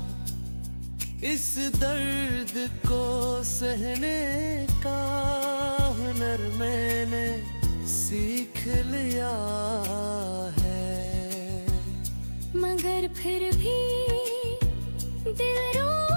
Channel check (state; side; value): inverted; both; correlation -1.00